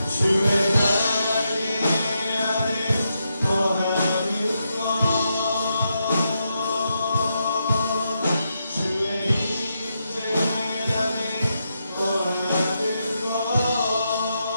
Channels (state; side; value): inverted; both; correlation -0.84